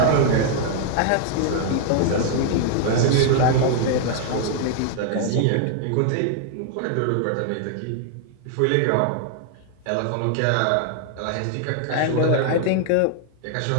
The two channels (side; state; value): both; different; correlation 0.00